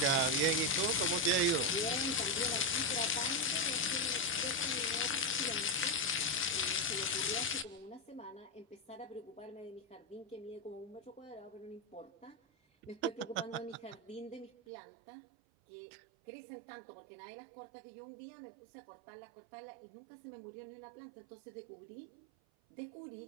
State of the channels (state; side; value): drops out; left; at 14.5 s